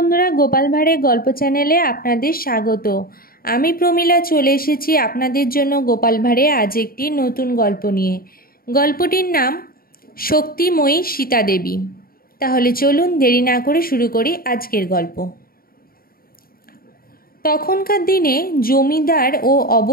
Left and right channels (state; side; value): late; right; 0.43 ms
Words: গোপাল ভাঁড়ের গল্প চ্যানেলে আপনাদের স্বাগত। আমি প্রমীলা চলে এসেছি আপনাদের জন্য গোপাল ভাঁড়ে আজ একটি নতুন গল্প নিয়ে। গল্পটির নাম শক্তিময়ী সীতা দেবী। তাহলে চলুন দেরি না করে শুরু করি আজকের গল্প। তখনকার দিনে জমিদার ও